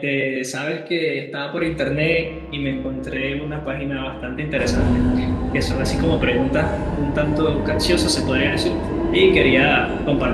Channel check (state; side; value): identical; both; correlation 1.00